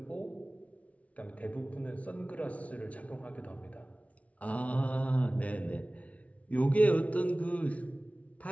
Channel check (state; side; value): late; right; 0.066 ms